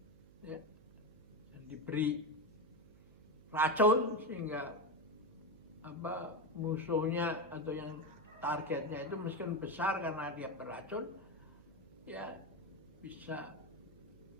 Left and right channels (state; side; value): noise; right; hum, 23 dB below the sound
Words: Ya. Dan diberi racun sehingga musuhnya atau yang targetnya itu meskipun besar karena dia beracun, ya bisa